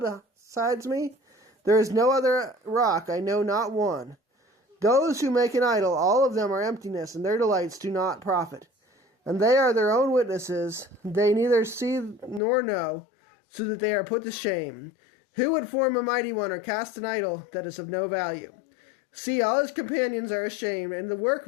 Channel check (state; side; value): drops out; right; at 12.4 s